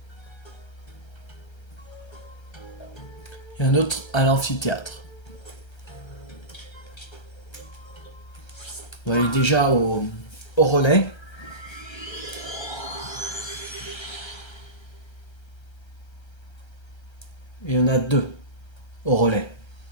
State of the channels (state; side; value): late; right; 1.3 ms